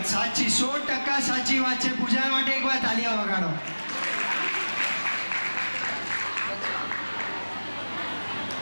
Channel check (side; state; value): both; inverted; correlation -1.00